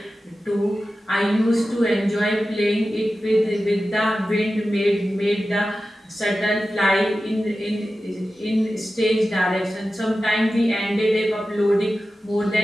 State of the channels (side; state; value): both; normal; correlation 0.93